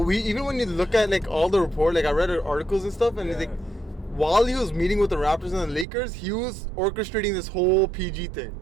when you look at like all the report, like I read articles and stuff, and it's like, while he was meeting with the Raptors and the Lakers, he was orchestrating this whole PG thing.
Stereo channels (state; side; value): drops out; left; at 5.9 s